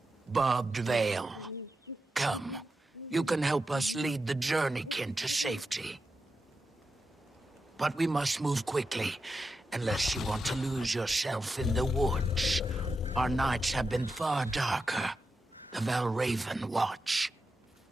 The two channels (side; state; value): both; normal; correlation 0.89